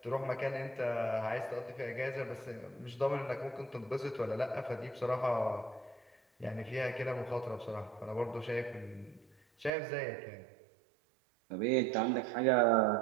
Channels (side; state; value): left; drops out; at 9.7 s